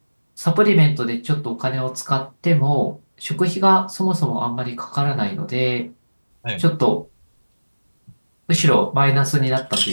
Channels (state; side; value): inverted; both; correlation -1.00